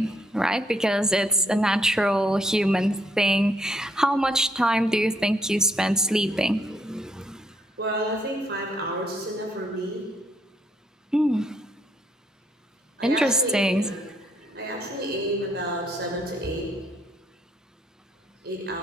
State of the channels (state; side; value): normal; both; correlation 0.71